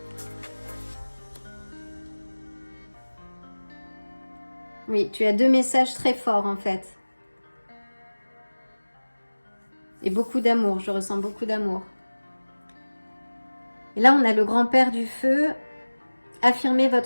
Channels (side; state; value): both; inverted; correlation -1.00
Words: Oui, tu as 2 messages très forts en fait. Et beaucoup d'amour, je ressens beaucoup d'amour. Et là, on a le grand-père du feu. Affirmez